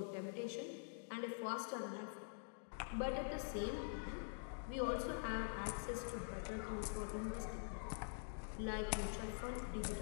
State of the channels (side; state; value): right; silent; digital silence